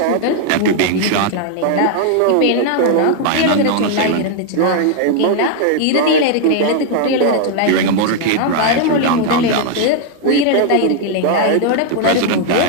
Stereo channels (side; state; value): both; different; correlation 0.00